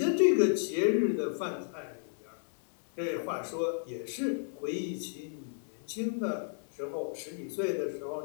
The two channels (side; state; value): right; silent; 56 dB below the other